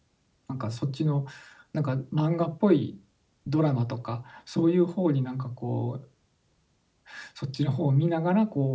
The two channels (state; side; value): identical; both; correlation 1.00